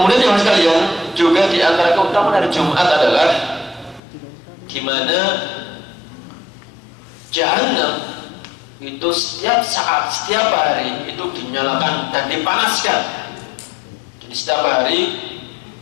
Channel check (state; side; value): drops out; right; at 4.0 s